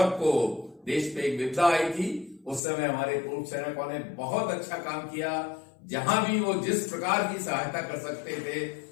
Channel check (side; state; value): right; drops out; at 2.6 s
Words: देश पे एक विपदा आई थी, उस समय हमारे पूर्व सैनिकों ने बहुत अच्छा काम किया। जहां भी वो जिस प्रकार की सहायता कर सकते थे